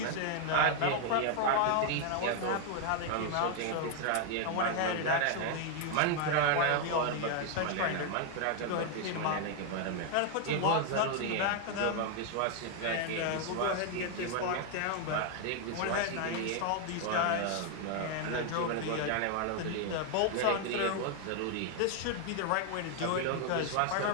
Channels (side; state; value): both; different; correlation 0.01